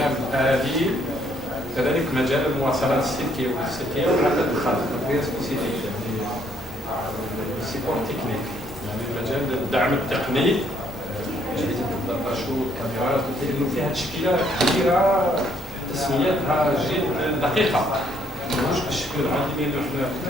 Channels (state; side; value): normal; both; correlation 0.69